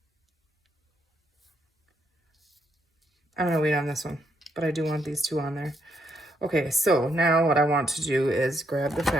I'm gonna wait on this one, but I do want these two on there. Okay, so now what I want to do is grab the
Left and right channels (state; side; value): normal; both; correlation 0.77